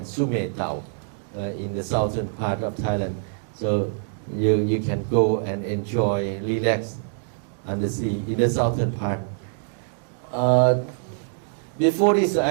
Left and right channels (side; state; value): left; silent; digital silence